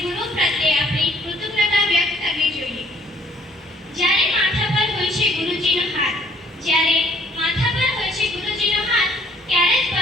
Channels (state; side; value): normal; both; correlation 0.60